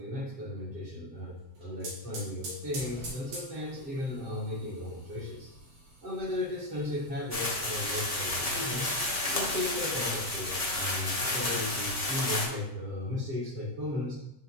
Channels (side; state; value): left; late; 7.7 ms